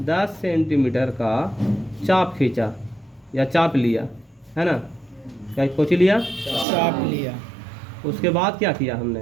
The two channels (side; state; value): left; drops out; at 6.7 s